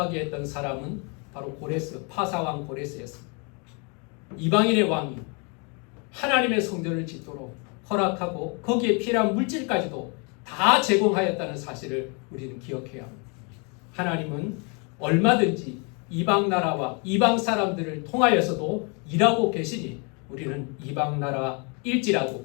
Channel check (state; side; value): quieter; right; 34.4 dB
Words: 했던 사람은 바로 고레스, 파사왕 고레스였습니다. 이방인의 왕이 하나님의 성전을 짓도록 허락하고 거기에 필요한 물질까지도 다 제공하였다는 사실을 우리는 기억해야 합니다. 하나님은 얼마든지 이방 나라와 이방 사람들을 통하여서도 일하고 계시니 우리는 이방 나라일지라도